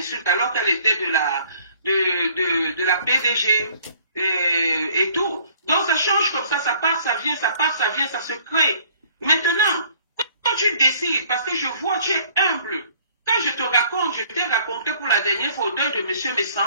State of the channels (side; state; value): both; inverted; correlation -0.56